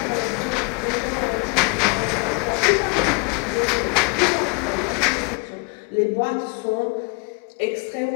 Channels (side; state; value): right; quieter; 32.4 dB